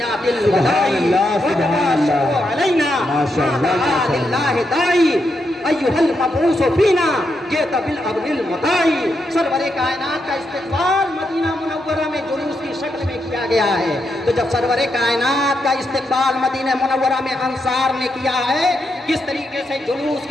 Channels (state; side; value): normal; both; correlation 0.82